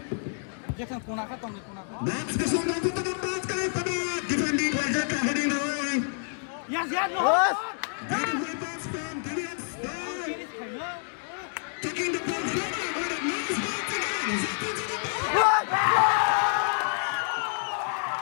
Jackson punah ka tong punah ka. That's the song of the ball pada defending Raja Kahani Roy. Yes, no. Beautiful pass from DBS. Taking the ball forward with a nice ball again.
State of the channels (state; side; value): silent; right; 59 dB below the other